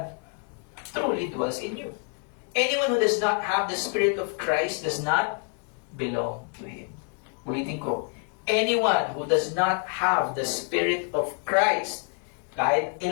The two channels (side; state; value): right; quieter; 38.9 dB